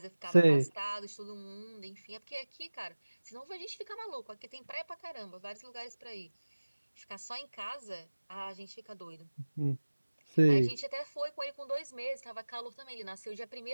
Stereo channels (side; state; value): both; inverted; correlation -1.00